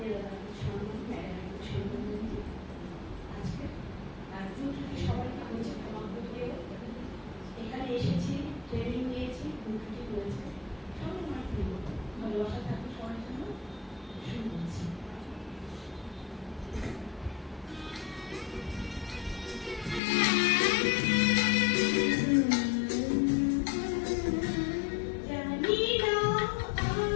আজকে সবাইকে বলছে ক্ষমা করে এখানে এসেছি, ট্রেনিং নিয়েছি, ছুটি করেছে, সবাই আমার প্রিয় ভালোবাসা থাকবে সবার জন্য। শুরু করছি।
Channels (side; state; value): right; drops out; at 20.0 s